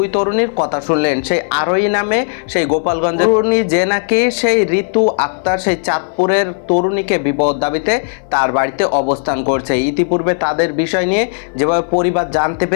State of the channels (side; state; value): right; silent; 61 dB below the other